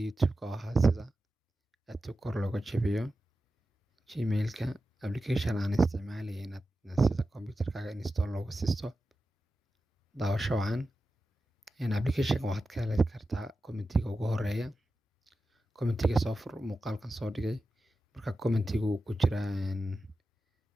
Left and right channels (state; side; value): normal; both; correlation 0.92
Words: YouTube-ka oo ahaa sida aadka kor looga jabiyo Gmail-ka application aan isticmaalayay inaad sida computer-kaaga install loogu siisto daawasho wacan application-ka waxaad ka heli kartaa commentiga ugu horeeya commentiga soo fur muuqaalkan soo dhigay marka commentiga uu ku jira